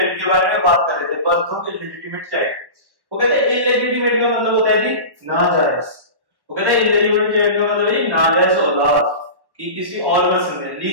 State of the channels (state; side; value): late; left; 1.1 ms